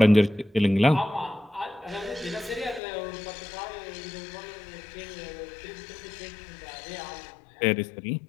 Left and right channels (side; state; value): right; drops out; at 2.8 s